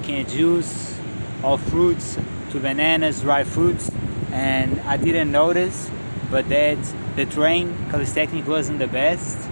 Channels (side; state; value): both; inverted; correlation -1.00